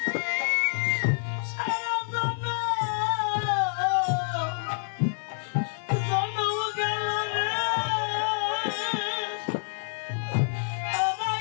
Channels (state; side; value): silent; right; 60 dB below the other